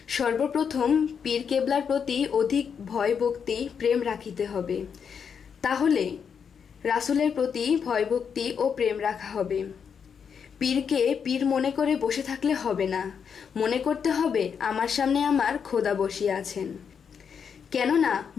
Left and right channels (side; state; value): right; quieter; 6.9 dB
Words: সর্বপ্রথম পীর কেবলার প্রতি অধিক ভয় ভক্তি প্রেম রাখিতে হবে। তাহলে রাসূলের প্রতি ভয় ভক্তি ও প্রেম রাখা হবে। পীরকে পীর মনে করে বসে থাকলে হবে না, মনে করতে হবে আমার সামনে আমার খোদা বসিয়া আছেন। কেননা